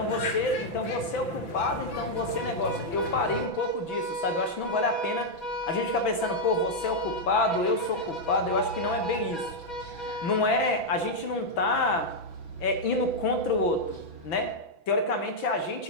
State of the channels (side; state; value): right; late; 6.0 ms